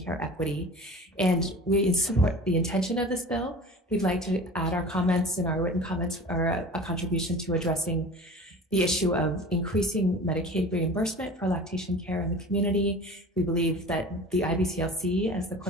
care equity. And we support the intention of this bill. We'd like to add our comments and our written comments, or a contribution to addressing the issue of increasing Medicaid reimbursement for lactation care in the community. We believe that the IBCLC, as the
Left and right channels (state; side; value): normal; both; correlation 0.39